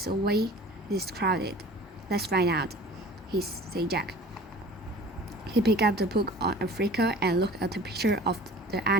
away this crowded?" "Let's find out," said Jack. He picked up the book on Africa and looked at the picture of the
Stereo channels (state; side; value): normal; both; correlation 0.44